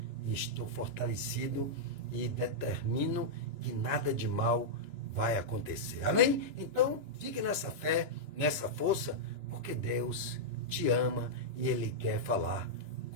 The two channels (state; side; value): late; left; 2.9 ms